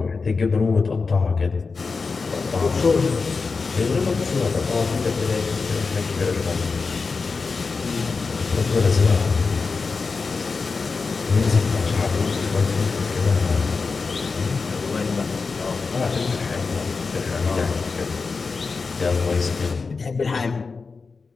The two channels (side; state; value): right; quieter; 4.6 dB